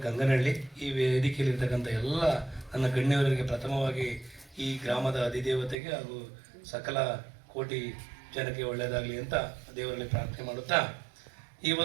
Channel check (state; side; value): drops out; left; at 5.8 s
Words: ಗಂಗನಹಳ್ಳಿ ಈ ವೇದಿಕೆಯಲ್ಲಿರ್ತಕ್ಕಂಥ ಎಲ್ಲ ನನ್ನ ಗಣ್ಯವರಿಗೆ ಪ್ರಥಮವಾಗಿ ಈ ಗ್ರಾಮದ ಅಧಿದೇವತೆಗೆ ಹಾಗೂ ಸಕಲ ಕೋಟಿ ಜನಕ್ಕೆ ಒಳ್ಳೆಯದಾಗಲಿ ಅಂತ ದೇವರಲ್ಲಿ ಪ್ರಾರ್ಥನೆ ಮಾಡುತ್ತಾ ಈ